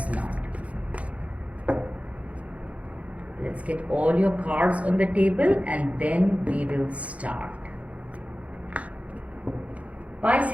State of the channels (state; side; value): late; left; 0.066 ms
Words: not. Let's get all your cards on the table and then we will start.